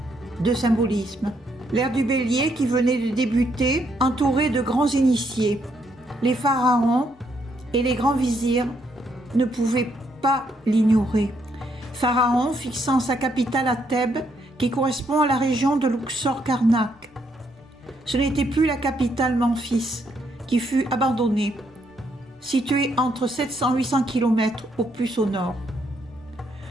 de symbolisme. L'ère du Bélier qui venait de débuter, entourée de grands initiés. Les pharaons et les grands vizirs ne pouvaient pas l'ignorer. Pharaon fixant sa capitale à Thèbes, qui correspond à la région de Luxor-Karnak. Ce n'était plus la capitale Memphis, qui fut abandonnée, située entre 700 et 800 km au plus au nord.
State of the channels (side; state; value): both; normal; correlation 0.74